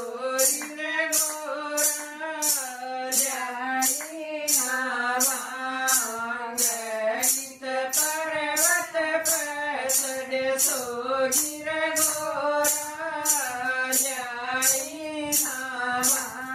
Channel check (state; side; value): identical; both; correlation 1.00